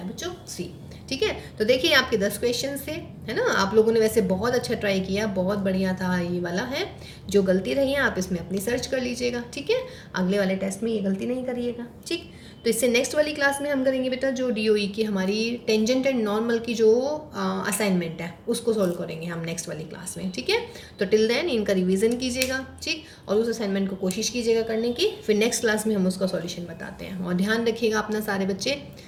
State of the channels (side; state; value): both; identical; correlation 1.00